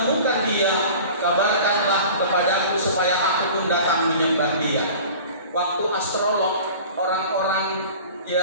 dia, kabarkanlah kepadaku supaya aku pun datang menyembah dia. Waktu astrolog, orang-orang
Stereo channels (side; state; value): both; inverted; correlation -0.41